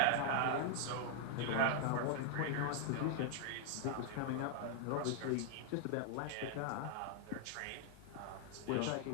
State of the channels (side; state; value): both; different; correlation 0.00